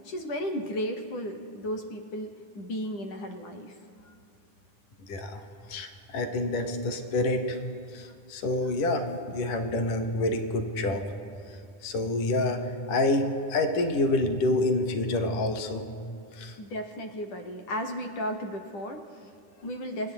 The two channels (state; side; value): late; right; 9.9 ms